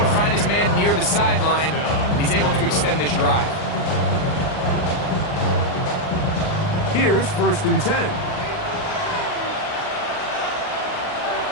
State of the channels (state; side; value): late; right; 39 ms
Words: find his man near the sideline, and he's able to extend this drive. Here's first and 10.